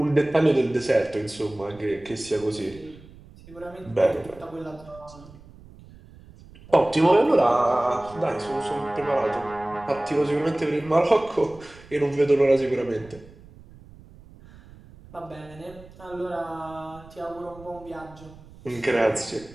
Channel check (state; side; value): noise; right; rumble, 21 dB below the sound